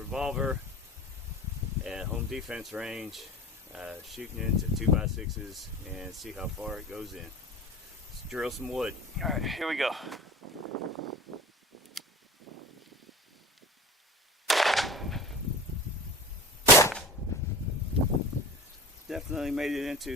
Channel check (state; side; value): normal; both; correlation 0.36